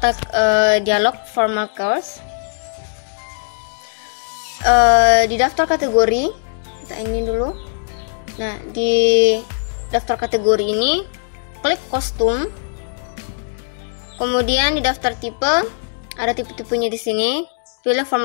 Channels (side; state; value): right; silent; 66 dB below the other